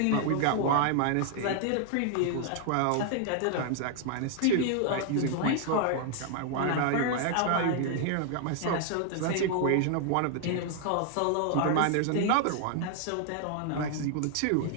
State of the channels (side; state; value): both; different; correlation 0.00